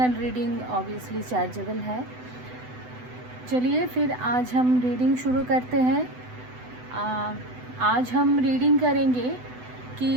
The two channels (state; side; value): late; left; 8.0 ms